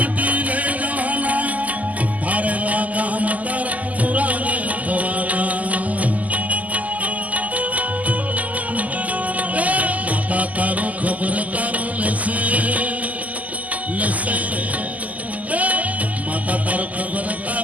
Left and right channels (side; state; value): left; late; 0.076 ms